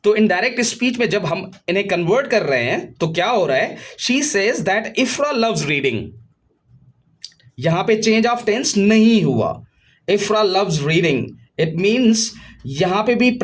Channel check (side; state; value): both; identical; correlation 1.00